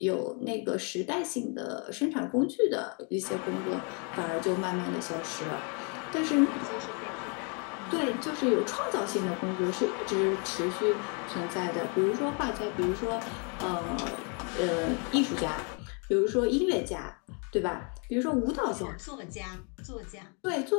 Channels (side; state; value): right; quieter; 36.5 dB